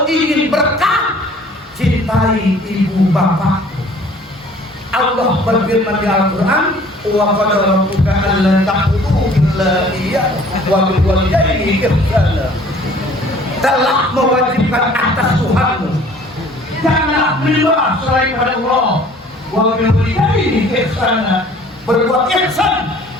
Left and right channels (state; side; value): normal; both; correlation 0.53